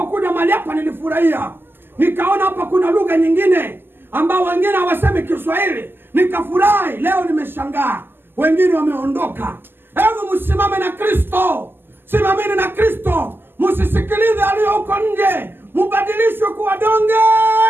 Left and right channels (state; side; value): late; left; 0.099 ms